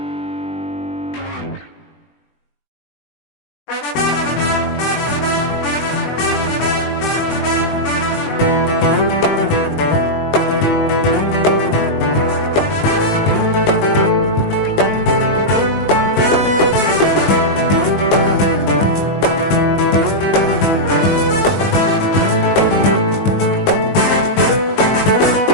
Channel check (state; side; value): late; right; 20 ms